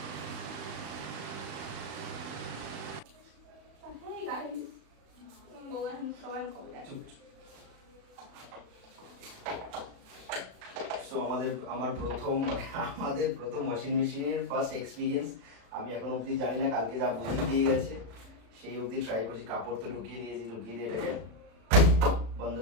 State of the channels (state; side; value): late; left; 36 ms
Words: এই গাড়ি বউ এখন সবাই কবে যায়? সো আমার প্রথম ওয়াশিং মেশিনের ফার্স্ট এক্সপিরিয়েন্স। আমি এখন অবধি জানি না, কালকে যা বুঝিয়ে দিয়ে গেছে সেই অবধি ট্রাই করছি। কাপড় তো ঢুকিয়ে দিয়েছি, ঢুকিয়ে দিয়ে এটাকে বন্ধ